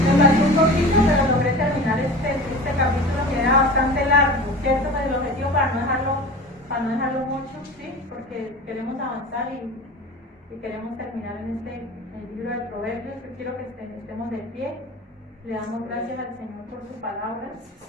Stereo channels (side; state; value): both; normal; correlation 0.35